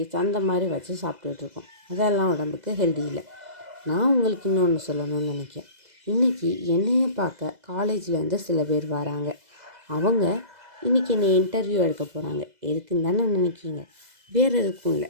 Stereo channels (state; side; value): late; left; 2.0 ms